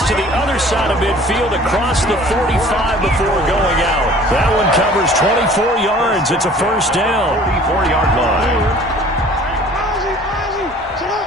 to the other side of midfield across the 45 before going out. That one covers 24 yards. It's a first down. 44-yard line.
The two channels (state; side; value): normal; both; correlation 0.50